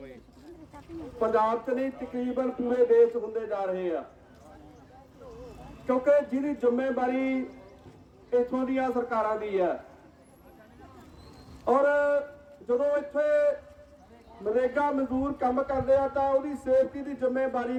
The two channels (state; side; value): identical; both; correlation 1.00